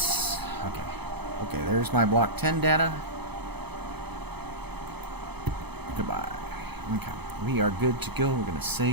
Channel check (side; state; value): left; late; 0.98 ms